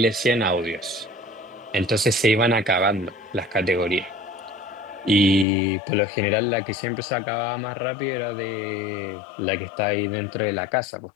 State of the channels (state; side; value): drops out; right; at 5.5 s